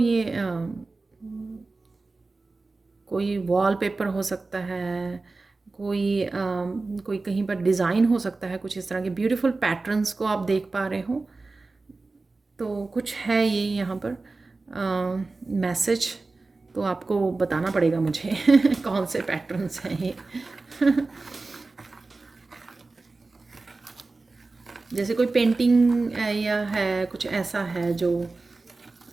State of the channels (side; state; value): left; quieter; 3.6 dB